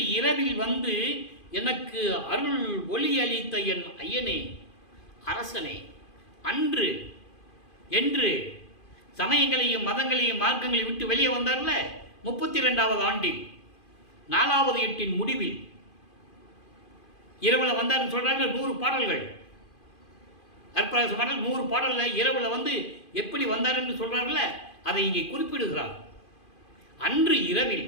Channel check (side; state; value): right; late; 2.5 ms